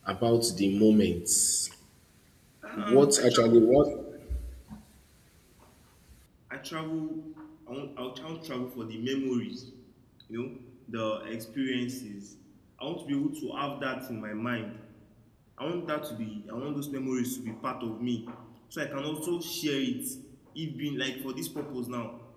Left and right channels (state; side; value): identical; both; correlation 1.00